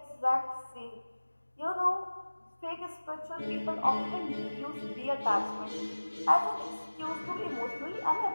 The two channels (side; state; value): both; inverted; correlation -1.00